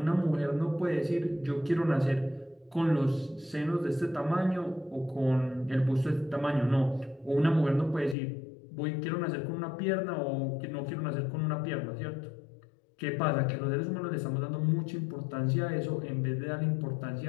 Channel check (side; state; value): right; drops out; at 8.2 s